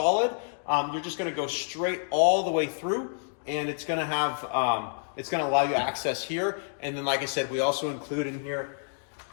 you're just going to go straight all the way through, and it's going to have it's going to allow you access here. And then, like I said, we also include in here,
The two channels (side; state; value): right; silent; digital silence